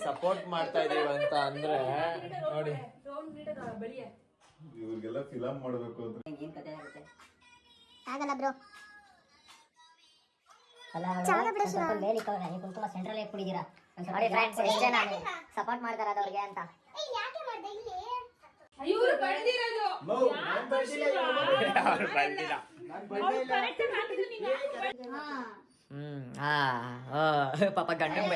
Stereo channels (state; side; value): identical; both; correlation 1.00